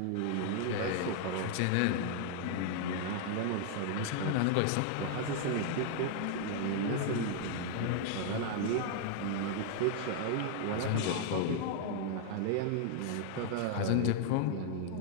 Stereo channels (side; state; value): both; different; correlation 0.00